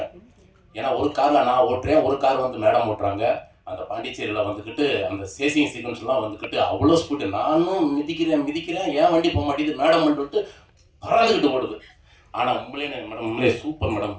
ஏன்னா ஒரு காரில் நான் ஓட்டுறேன், ஒரு கார் வந்து மேடம் ஓட்டுறாங்க. அந்த பாண்டிச்சேரியில் வந்துக்கிட்டு அந்த சேசிங் சீக்வன்ஸ்லாம் வந்துக்கிட்டு அவ்வளோ ஸ்பீடு. நானும் மிதிக்கிறேன், ஏன் வண்டி போக மாட்டேங்குது, மேடம் வந்துட்டு பறந்துக்கிட்டு ஓடுது. ஆனால் உண்மையிலே சூப்பர்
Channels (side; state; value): both; identical; correlation 1.00